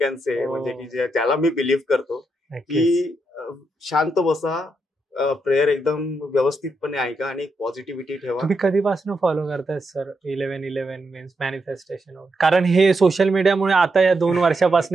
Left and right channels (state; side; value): normal; both; correlation 0.82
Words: say, म्हणजे की ज्याला मी बिलीव्ह करतो की शांत बसा, प्रेयर एकदम व्यवस्थितपणे ऐका आणि पॉझिटिव्हिटी ठेवा. तुम्ही कधीपासून फॉलो करताय सर 11-11 मीन्स मॅनिफेस्टेशन? कारण हे सोशल मीडियामुळे आता या 2